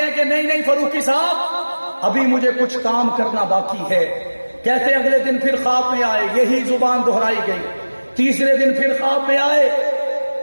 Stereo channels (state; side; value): inverted; both; correlation -1.00